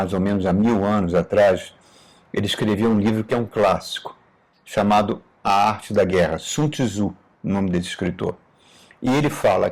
ou menos há 1000 anos atrás, ele escreveu um livro que é um clássico, chamado A Arte da Guerra, Sun Tzu, o nome desse escritor. E ele fala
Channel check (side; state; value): both; identical; correlation 1.00